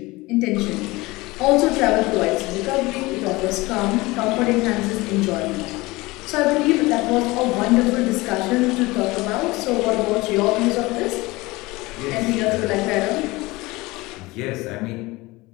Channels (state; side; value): quieter; right; 21.6 dB